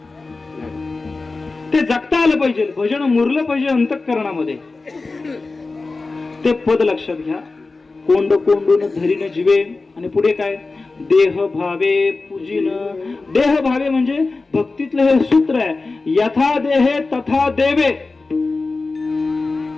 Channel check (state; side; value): quieter; right; 3.7 dB